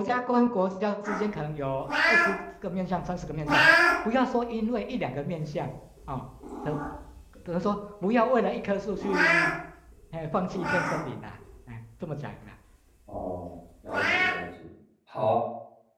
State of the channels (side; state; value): both; identical; correlation 1.00